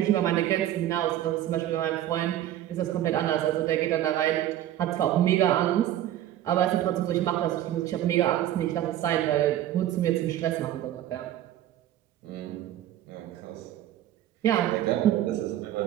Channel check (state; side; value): quieter; left; 12.5 dB